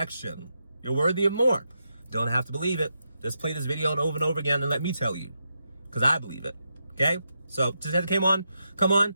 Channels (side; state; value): both; inverted; correlation -0.84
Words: You're worthy of more. Don't have to believe it. Just play this video over and over again and let me tell you, because I believe it. Okay? So just as it come on,